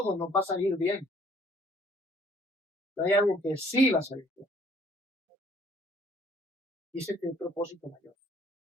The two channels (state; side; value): normal; both; correlation 0.59